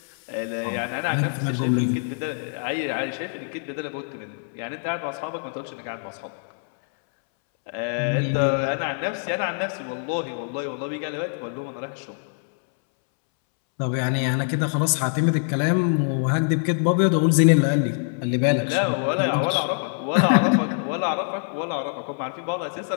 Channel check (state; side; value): silent; right; 62 dB below the other